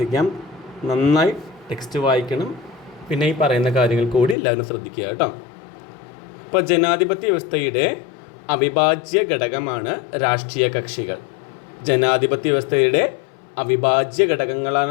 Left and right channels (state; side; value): drops out; right; at 4.4 s